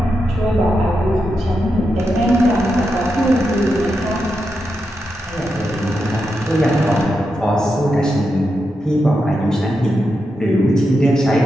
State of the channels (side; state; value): both; normal; correlation 0.86